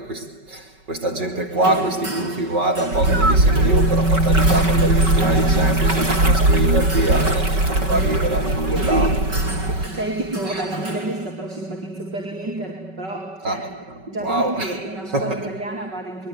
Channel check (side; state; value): left; late; 5.3 ms